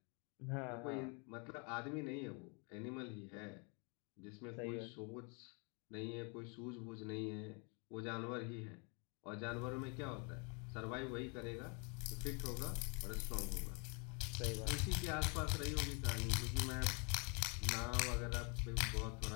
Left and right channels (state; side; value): quieter; right; 34.9 dB